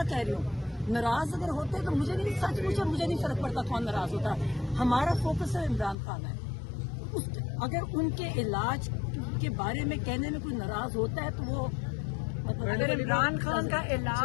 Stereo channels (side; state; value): right; drops out; at 6.0 s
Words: کہہ رہی ہوں, ناراض اگر ہوتے تو مجھے نہیں, سچ پوچھے مجھے نہیں فرق پڑتا کون ناراض ہوتا. ہمارا فوکس ہے عمران خان ہے. اگر ان کے علاج کے بارے میں کہنے میں کوئی ناراض ہوتا ہے تو وہ اگر عمران خان کا